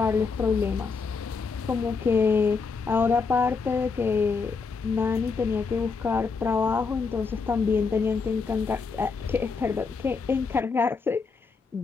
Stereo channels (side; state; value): right; quieter; 4.8 dB